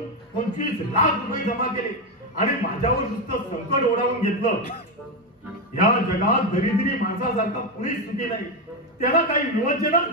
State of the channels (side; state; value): both; normal; correlation 0.09